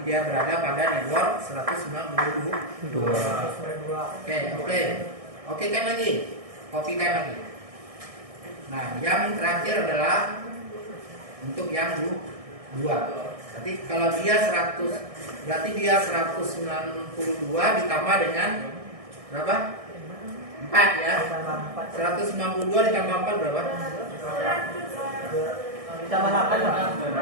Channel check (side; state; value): left; late; 1.6 ms